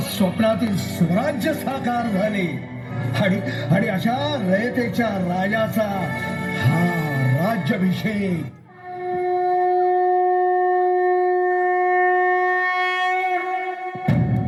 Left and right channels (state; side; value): identical; both; correlation 1.00